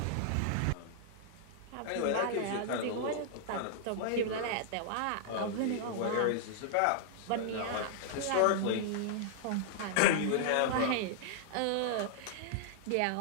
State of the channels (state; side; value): different; both; correlation -0.01